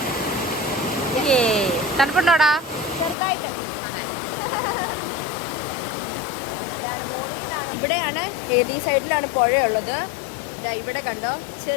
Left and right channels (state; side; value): drops out; right; at 3.2 s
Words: തണുപ്പുണ്ടോടാ? ചെറുതായിട്ട്. അതെ, ഇവിടെയാണ്, ഈ സൈഡിലാണ് പുഴയുള്ളത്. ഇവിടെ കണ്ടോ,